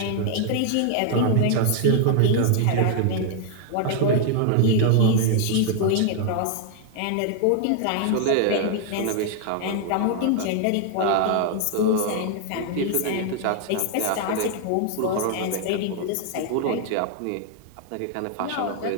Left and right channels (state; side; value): different; both; correlation 0.00